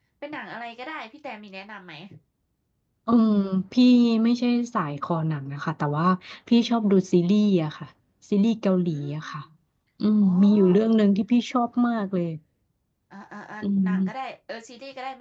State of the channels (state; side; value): identical; both; correlation 1.00